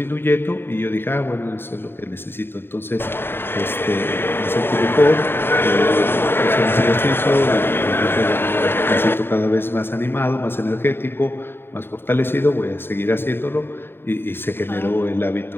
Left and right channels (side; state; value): right; late; 0.11 ms